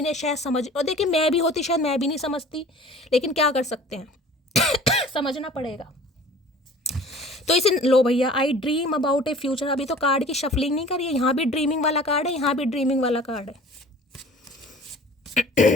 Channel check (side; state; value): both; normal; correlation 0.46